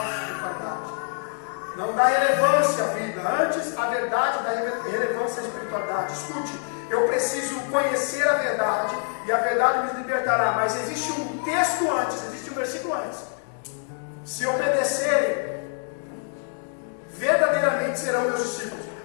espiritualidade. Não dá relevância à vida, antes a verdade dá relevância à espiritualidade. Escute, eu preciso conhecer a verdade e a verdade me libertará. Mas existe um texto antes, existe um versículo antes. Se obedecerem, verdadeiramente serão meus discípulos.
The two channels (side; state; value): right; silent; 61 dB below the other